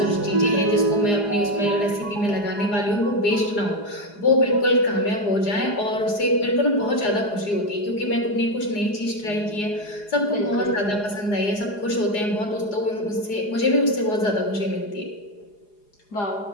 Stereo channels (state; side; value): late; right; 4.8 ms